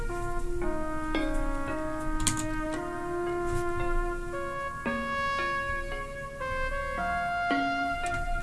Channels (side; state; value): both; identical; correlation 1.00